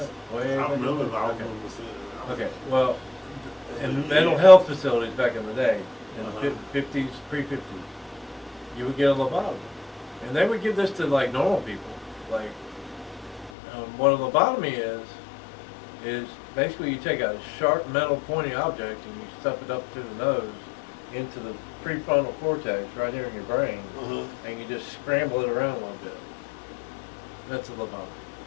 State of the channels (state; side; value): drops out; right; at 13.5 s